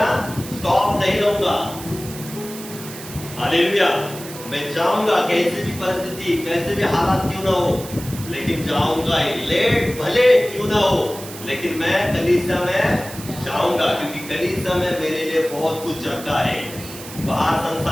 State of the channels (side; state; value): right; noise; hiss, 13 dB below the sound